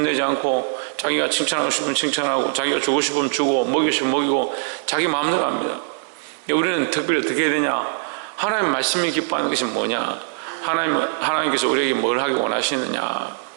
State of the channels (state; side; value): silent; left; 62 dB below the other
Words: 않고 자기가 칭찬하고 싶으면 칭찬하고 자기가 주고 싶으면 주고 먹이고 싶으면 먹이고 자기 마음대로 합니다. 우리는 특별히 어떻게 해야 되냐? 하나님 말씀이 기뻐하는 것이 뭐냐? 하나님께서 우리에게 뭘 하기 원하시느냐?